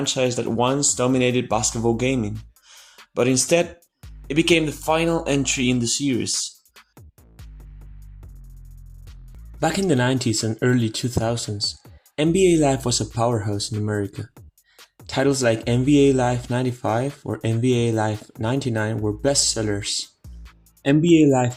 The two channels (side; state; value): both; identical; correlation 1.00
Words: that once dominated basketball gaming, but instead, it became the final entry in the series. Back in the 90s and early 2000s, NBA Live was a powerhouse in America. Titles like NBA Live 95 or NBA Live 99 were bestsellers. NBA Live